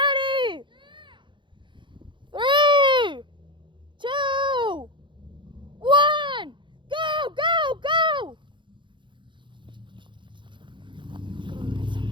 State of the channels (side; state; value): left; late; 0.23 ms